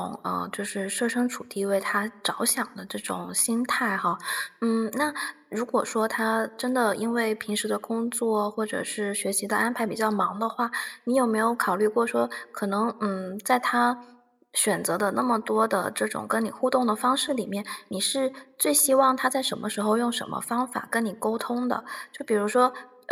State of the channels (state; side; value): identical; both; correlation 1.00